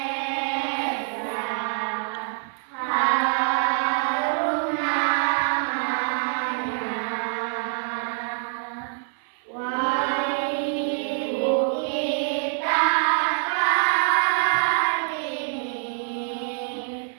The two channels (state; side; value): silent; left; 60 dB below the other